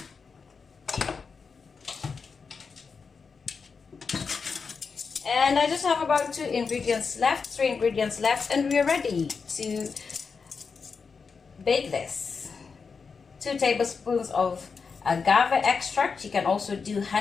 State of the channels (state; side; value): quieter; right; 5.2 dB